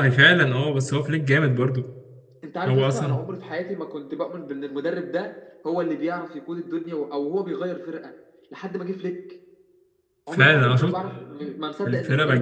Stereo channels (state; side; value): identical; both; correlation 1.00